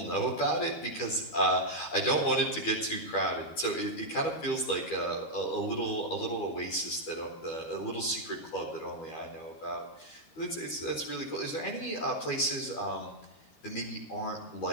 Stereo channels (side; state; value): right; late; 12 ms